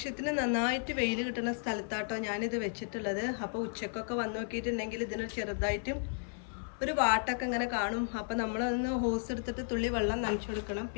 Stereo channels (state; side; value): silent; right; 55 dB below the other